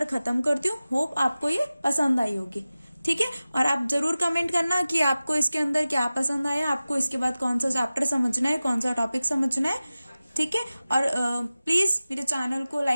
खत्म करती हूँ। होप आपको ये पसंद आई होगी, ठीक है। और आप जरूर कमेंट करना कि आपको इसके अंदर क्या पसंद आया, आपको इसके बाद कौन सा चैप्टर समझना है, कौन सा टॉपिक समझना है, ठीक है। और प्लीज मेरे चैनल को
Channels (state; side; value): inverted; both; correlation -0.96